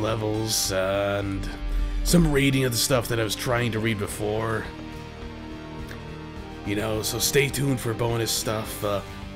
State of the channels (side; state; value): both; identical; correlation 1.00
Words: levels, and some reading of the stuff that I was trying to read before. You know, so stay tuned for bonus stuff.